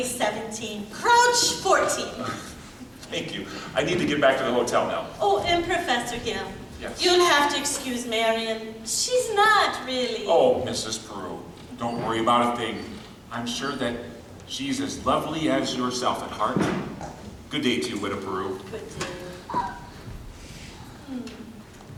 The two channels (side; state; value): both; identical; correlation 1.00